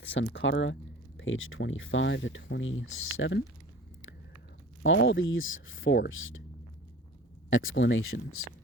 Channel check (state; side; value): normal; both; correlation 0.41